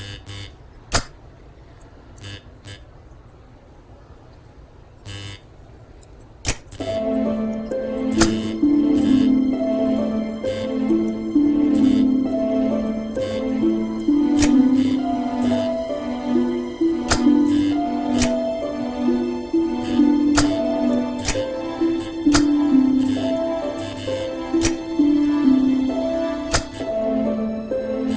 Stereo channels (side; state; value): both; identical; correlation 1.00